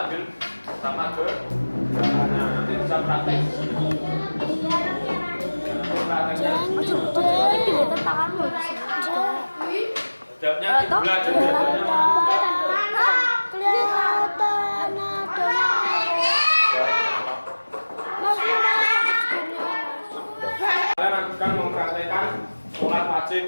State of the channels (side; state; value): both; inverted; correlation -1.00